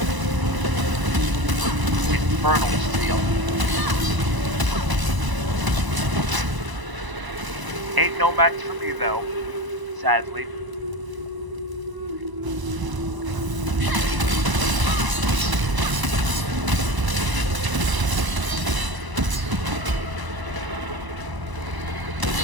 Infernal steel. Ain't no match for me though, sadly.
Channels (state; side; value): late; left; 1.0 ms